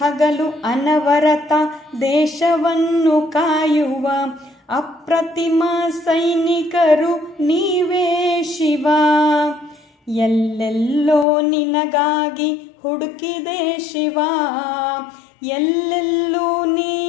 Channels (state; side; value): drops out; right; at 11.2 s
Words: ಅನವರತ ದೇಶವನ್ನು ಕಾಯುವ ಅಪ್ರತಿಮ ಸೈನಿಕರು ನೀವೇ ಶಿವ, ಎಲ್ಲೆಲ್ಲೋ ನಿನಗಾಗಿ ಹುಡುಕಿದೆ ಶಿವ, ಎಲ್ಲೆಲ್ಲೂ ನೀ